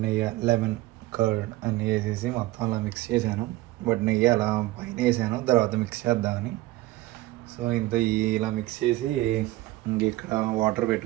నెయ్యి, లెమన్ కర్డ్ అన్నీ వేసేసి మొత్తం అలా మిక్స్ చేశాను. బట్ నెయ్యి అలా పైన వేసాను, తర్వాత మిక్స్ చేద్దామని. సో ఇలా మిక్స్ చేసి ఇంక ఇక్కడ వాటర్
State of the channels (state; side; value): quieter; left; 17.8 dB